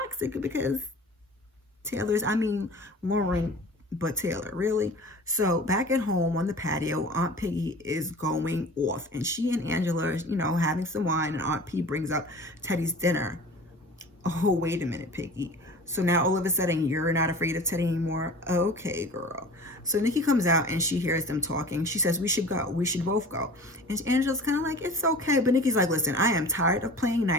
because Lauren, but Taylor, really? So back at home on the patio, Aunt Piggy is going off and she and Angela are, having some wine, and Aunt P brings up Teddy's dinner. Oh, wait a minute, Piggy. So now all of a sudden you're not afraid of Teddy anymore? Okay, girl. So Nikki comes out and she hears them talking. She says, we should go. We should both go. And Angela's kind of like, it's okay. But Nikki's like, listen, I am tired of playing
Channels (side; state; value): both; normal; correlation 0.40